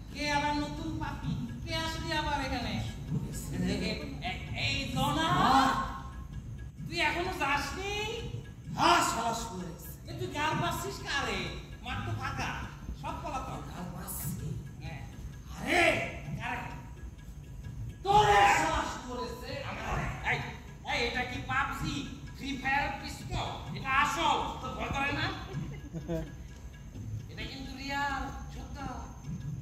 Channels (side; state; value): both; identical; correlation 1.00